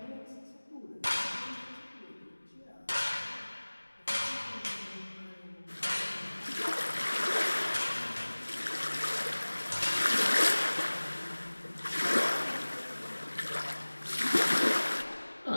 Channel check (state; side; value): inverted; both; correlation -1.00